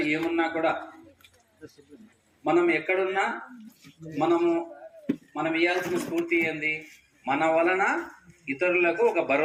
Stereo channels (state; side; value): identical; both; correlation 1.00